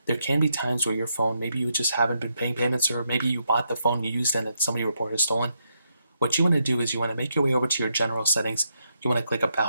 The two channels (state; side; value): inverted; both; correlation -0.80